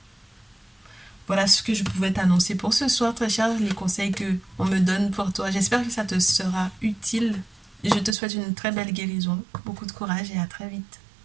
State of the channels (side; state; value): left; drops out; at 8.2 s